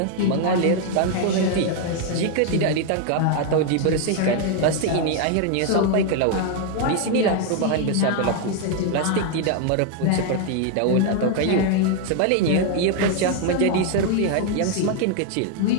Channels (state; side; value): different; both; correlation 0.00